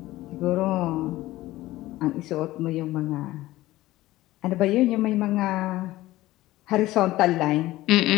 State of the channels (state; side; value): quieter; right; 17.0 dB